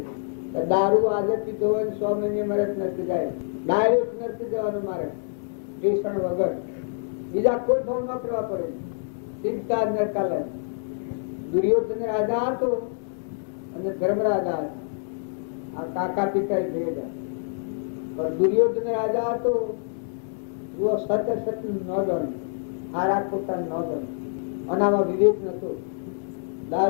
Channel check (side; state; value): right; silent; digital silence